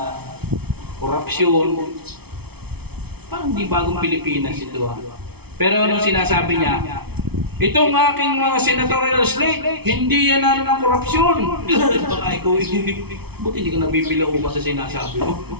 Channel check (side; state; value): left; late; 0.98 ms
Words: korupsyon. Parang di bagong Pilipinas ito. Pero anong sinasabi niya? Itong aking mga senatorial slate, hindi yan ng korupsyon. Baka ikaw, buti hindi ka nabibilang ba sa sinasabi mo?